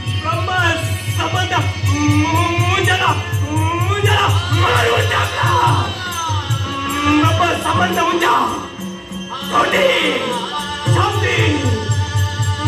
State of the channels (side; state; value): both; identical; correlation 1.00